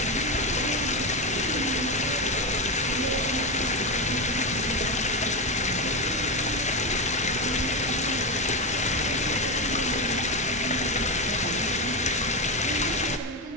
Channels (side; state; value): both; normal; correlation 0.13